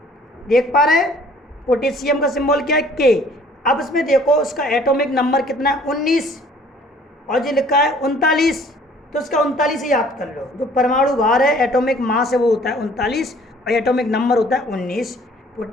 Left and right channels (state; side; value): normal; both; correlation 0.55